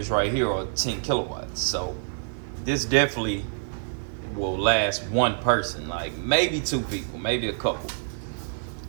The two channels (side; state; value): left; silent; digital silence